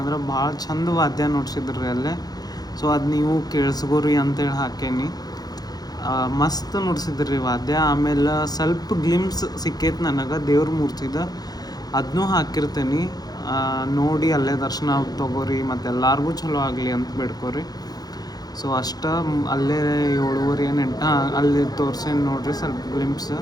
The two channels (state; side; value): late; right; 0.19 ms